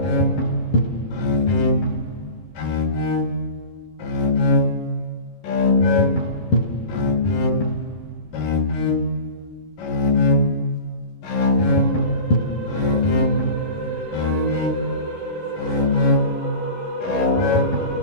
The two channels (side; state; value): right; late; 11 ms